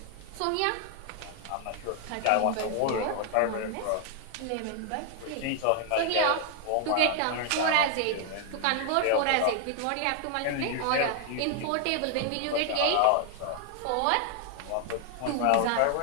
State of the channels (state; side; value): different; both; correlation 0.00